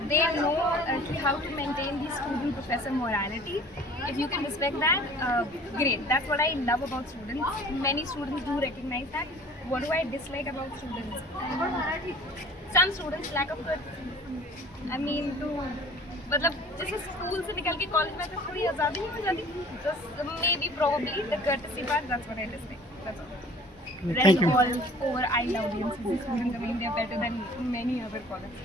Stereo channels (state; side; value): normal; both; correlation 0.49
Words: They know how to maintain the student-professor morality. If you can respect that, great. That's what I love about students. Many students do recognize that. What do I dislike about students? Some students lack of courtesy. I mean, मतलब जैसे स्कूल से निकल के कॉलेज में थोड़ी आज़ादी नहीं हो जाती, may be probably the courtesy part, that's what I dislike. That's all. Rest all over, I love DMCC students. I mean, they're better than many other